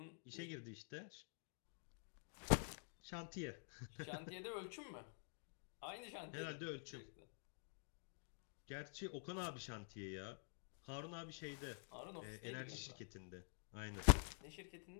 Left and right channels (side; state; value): right; silent; digital silence